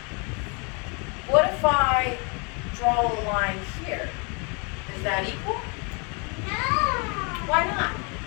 What if I draw a line here? Is that equal? no. Why not?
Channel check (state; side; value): quieter; right; 33.4 dB